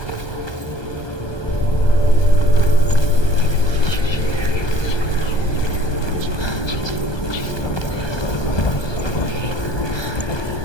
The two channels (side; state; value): right; late; 1.2 ms